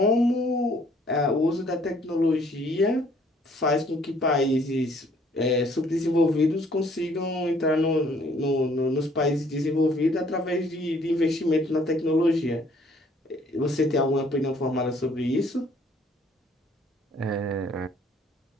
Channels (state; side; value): normal; both; correlation 0.61